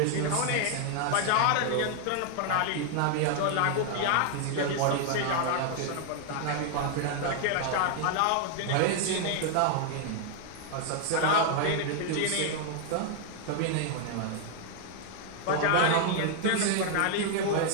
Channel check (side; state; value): both; different; correlation 0.00